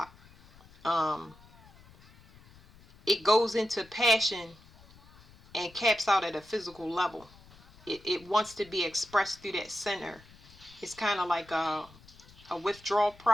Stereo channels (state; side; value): noise; left; rumble, 24 dB below the sound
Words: It goes into passion and caps out at a physical level. It wants to be expressed through that center. It's kind of like a withdrawal